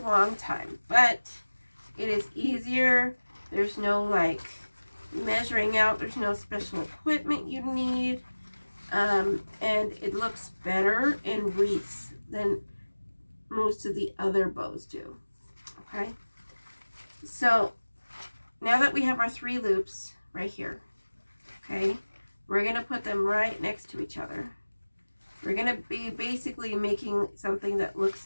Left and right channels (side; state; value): both; inverted; correlation -1.00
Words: time, but it is easier. There's no like measuring out. There's no special equipment you need. And it looks better in wreaths than most of the other bows do. Okay. So now that we have our 3 loops right here, okay, we're going to put them right next to each other. We're going to be basically making something that